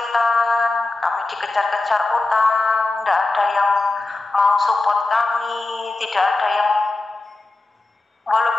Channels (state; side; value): quieter; right; 3.2 dB